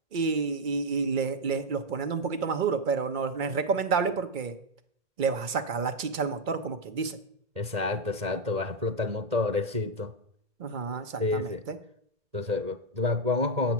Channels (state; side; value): late; left; 2.3 ms